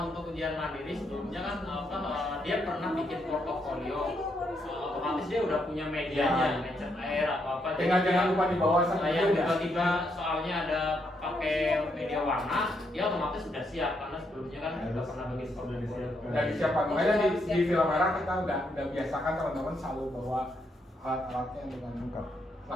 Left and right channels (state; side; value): normal; both; correlation 0.77